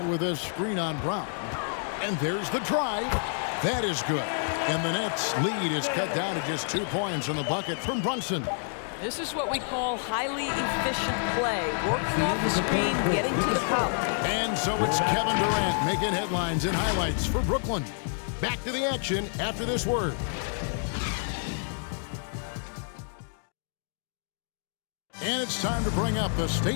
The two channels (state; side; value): silent; right; 59 dB below the other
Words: with a screen on Brown. And there's the drive. That is good. And the Nets' lead is cut down to just 2 points on the bucket from Brunson. This is what we call highly efficient play. Working off the screen, getting to the cup. And so it's Kevin Durant making headlines and highlights for Brooklyn. Back to the action after this word. And it's time to bring up the